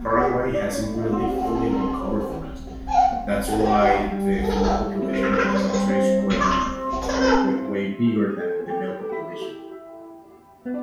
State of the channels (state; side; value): identical; both; correlation 1.00